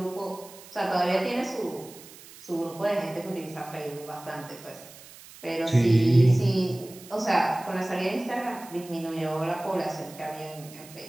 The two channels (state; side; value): noise; right; hiss, 19 dB below the sound